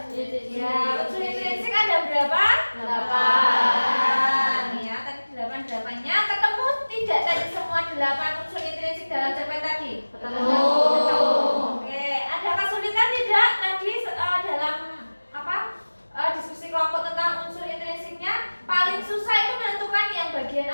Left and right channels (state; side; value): inverted; both; correlation -1.00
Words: delapannya ketemu tidak tadi semua 8 unsur intrinsik dalam cerpen tadi? Ketemu. Oke, ada kesulitan tidak tadi dalam diskusi kelompok tentang unsur intrinsiknya? Paling susah itu menentukan yang bagian